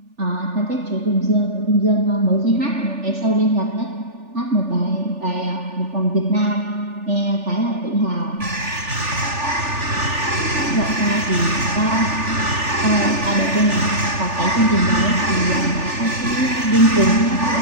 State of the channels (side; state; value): left; late; 3.4 ms